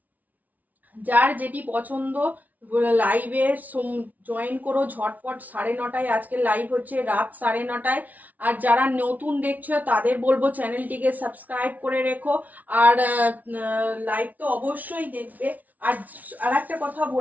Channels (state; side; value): late; left; 0.075 ms